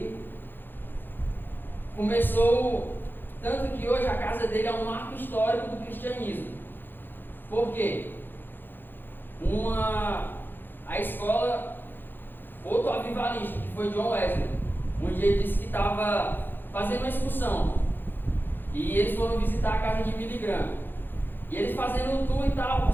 começou, tanto que hoje a casa dele é um marco histórico do cristianismo. Por quê? A escola, outro avivalista, que foi John Wesley, um dia ele disse que estava fazendo uma excursão, e eles foram visitar a casa de Billy Graham, e eles fazendo um tour e tal,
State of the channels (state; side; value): late; right; 0.095 ms